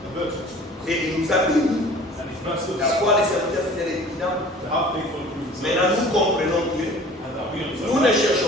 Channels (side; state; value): both; normal; correlation 0.47